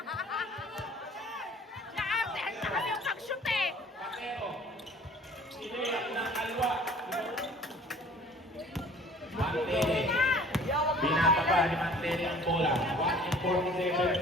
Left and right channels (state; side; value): normal; both; correlation 0.51